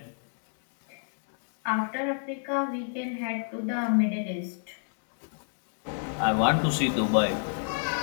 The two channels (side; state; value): right; silent; digital silence